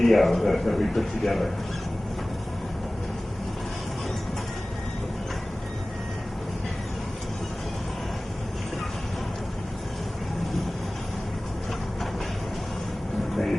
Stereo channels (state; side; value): normal; both; correlation 0.98